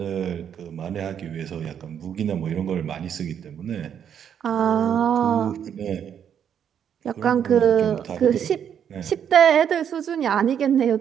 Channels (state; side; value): quieter; left; 8.6 dB